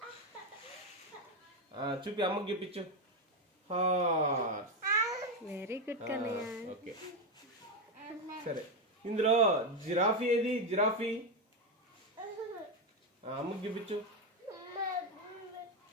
చూపి అమ్మకి చూపించు. Horse. Very good Kannayya. Okay సరే ఇందులో జిరాఫీ ఏది? జిరాఫీ అమ్మకి చూపించు.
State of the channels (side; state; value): both; normal; correlation 0.08